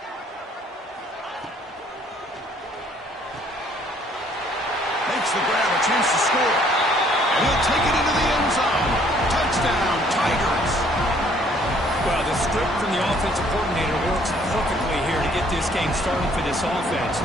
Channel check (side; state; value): both; normal; correlation 0.61